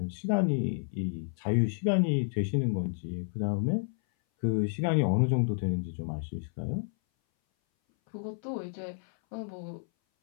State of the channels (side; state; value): right; silent; 57 dB below the other